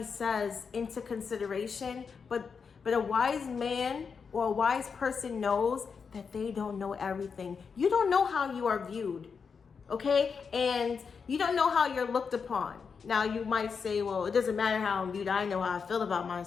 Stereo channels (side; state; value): right; quieter; 5.8 dB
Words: says into consideration, but a wise man or a wise person knows that they don't know everything. You don't know how you are viewed, okay? And you don't know how you're looked upon. Now, you might say, well, it doesn't matter how I'm viewed. I know how I feel about